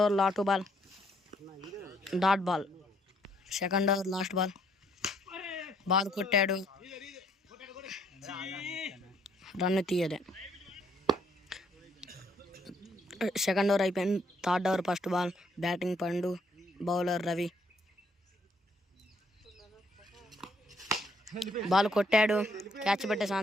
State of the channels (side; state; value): both; normal; correlation 0.68